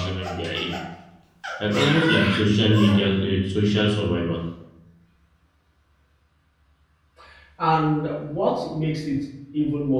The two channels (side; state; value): both; identical; correlation 1.00